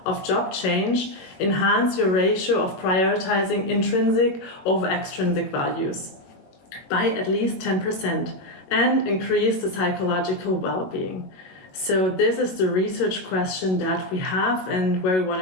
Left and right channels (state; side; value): late; right; 21 ms